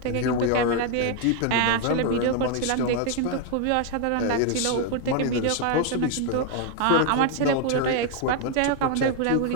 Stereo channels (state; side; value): different; both; correlation 0.00